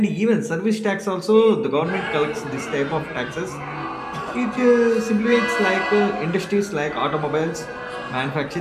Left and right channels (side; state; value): both; identical; correlation 1.00